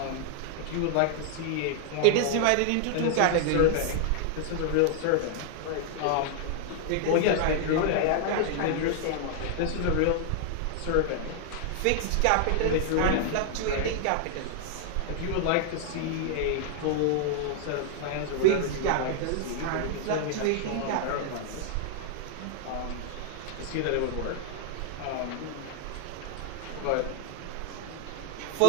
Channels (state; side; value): different; both; correlation 0.00